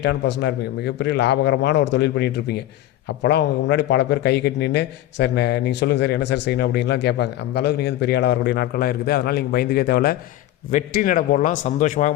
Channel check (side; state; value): right; quieter; 14.0 dB